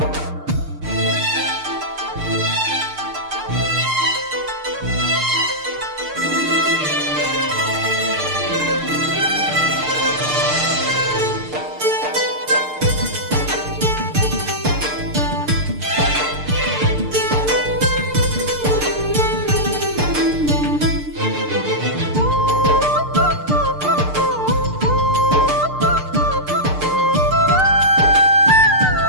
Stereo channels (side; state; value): left; late; 6.6 ms